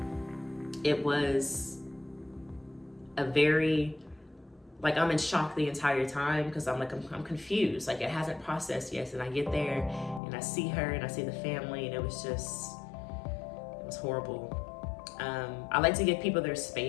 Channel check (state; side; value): drops out; right; at 10.2 s